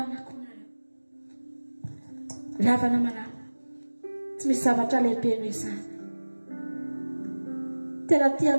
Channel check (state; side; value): inverted; both; correlation -1.00